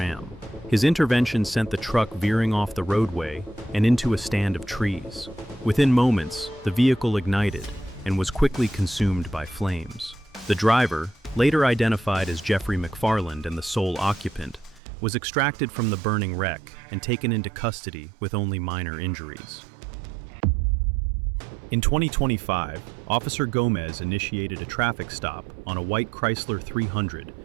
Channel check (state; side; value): drops out; left; at 14.8 s